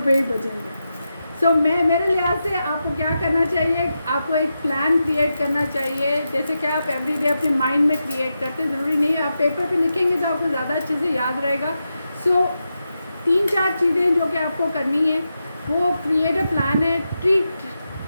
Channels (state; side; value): inverted; both; correlation -0.88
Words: ही बचेंगे। सो मेरे लिहाज से आपको क्या करना चाहिए, आपको एक प्लान क्रिएट करना चाहिए, जैसे कि आप एवरीडे अपने माइंड में क्रिएट करते हैं। ज़रूरी नहीं है आप पेपर पे लिखेंगे तो आपको ज़्यादा अच्छे से याद रहेगा। सो 3-4 चीज़ें जो कि आपको करनी है, वो क्रिएट अ प्लान है। ट्रीट